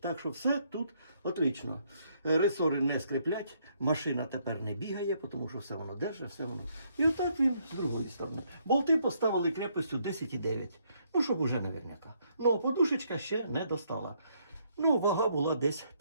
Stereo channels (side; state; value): both; inverted; correlation -0.71